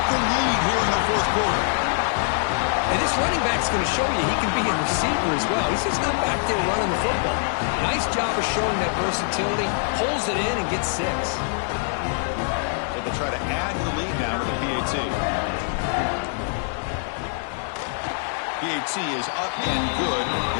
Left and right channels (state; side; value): silent; right; 63 dB below the other